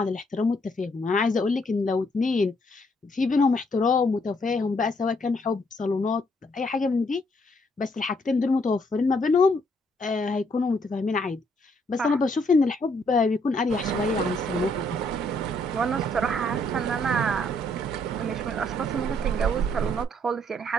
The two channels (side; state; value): both; normal; correlation 0.70